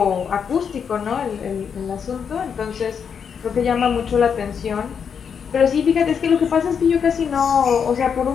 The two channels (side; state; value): right; quieter; 7.0 dB